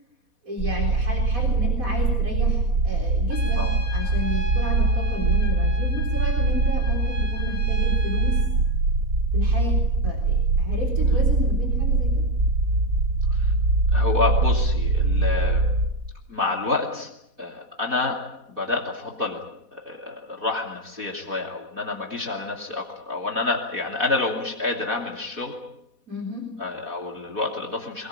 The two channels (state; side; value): late; left; 4.1 ms